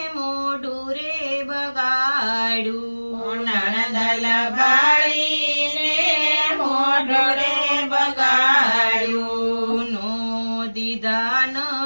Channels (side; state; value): both; inverted; correlation -1.00